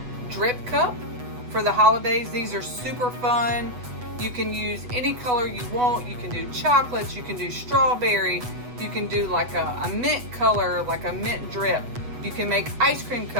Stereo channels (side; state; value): left; late; 8.1 ms